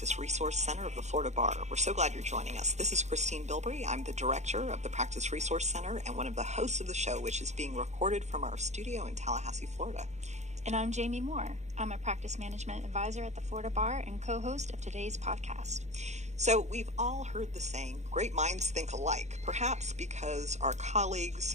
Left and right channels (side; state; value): left; late; 0.33 ms